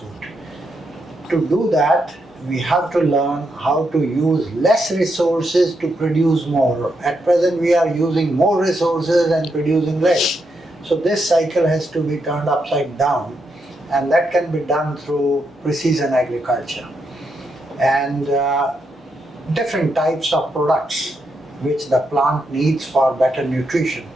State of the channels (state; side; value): normal; both; correlation 0.81